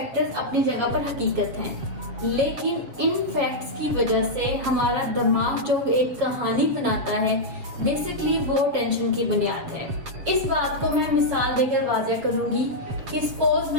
अपनी जगह पर हकीकत हैं, लेकिन इन फैक्ट्स की वजह से हमारा दिमाग जो एक कहानी बनाता है, बेसिकली वो टेंशन की बुनियाद है। इस बात को मैं मिसाल देकर वाज़ह करूंगी कि सपोज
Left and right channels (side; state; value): left; late; 7.4 ms